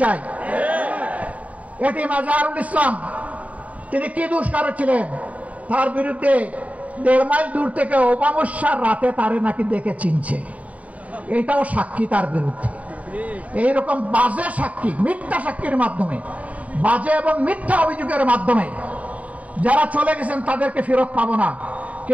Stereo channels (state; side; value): late; left; 0.069 ms